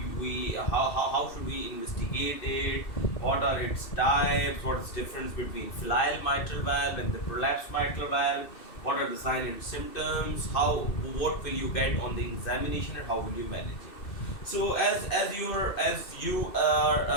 we investigate it, what are its types, what is the difference between filial mitral valve and the prolapsed mitral valve, what are the signs and symptoms, what will you get on the examination, and how will you manage it. So as you are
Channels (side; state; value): right; late; 2.7 ms